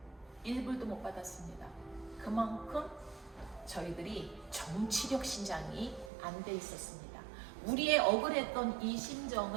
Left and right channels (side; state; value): left; drops out; at 6.1 s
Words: 1불도 못 받았습니다. 그만큼 저희들이 정치력 신장이 안 돼 있었습니다. 우리의 억울했던 이